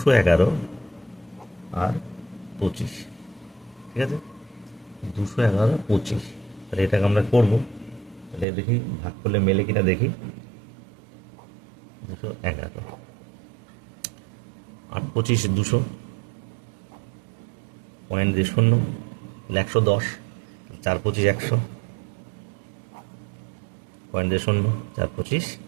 আর 25। ঠিক আছে, 211 25। তাহলে এটাকে আমরা করবো, তাহলে দেখি ভাগ করলে মেলে কিনা দেখি। 211 8 25 200, পয়েন্ট দিয়ে 0, 110, 4 25 100, পয়েন্ট দিয়ে 0, 4 25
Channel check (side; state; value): left; drops out; at 8.5 s